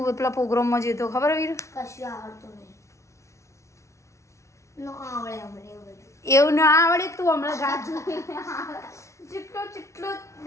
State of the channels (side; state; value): right; late; 0.14 ms